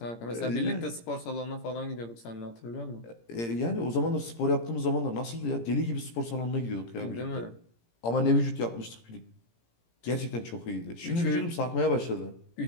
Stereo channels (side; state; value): right; late; 17 ms